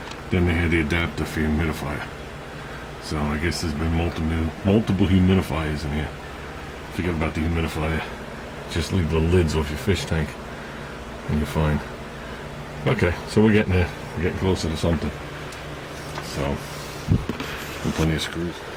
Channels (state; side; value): identical; both; correlation 1.00